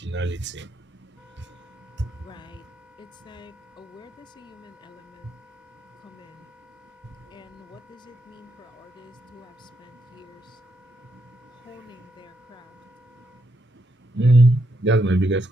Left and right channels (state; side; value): normal; both; correlation 0.79